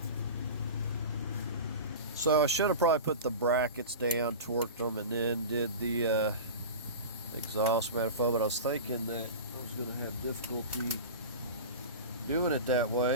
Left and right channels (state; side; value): inverted; both; correlation -0.31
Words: So I should have probably put the brackets down, torqued them, and then did the exhaust manifold, but I was thinking that I was going to have difficulty doing it that